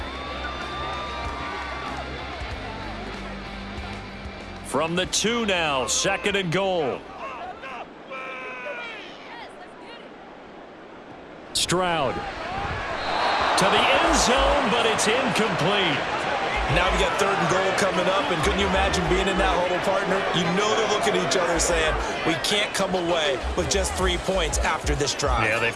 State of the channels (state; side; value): identical; both; correlation 1.00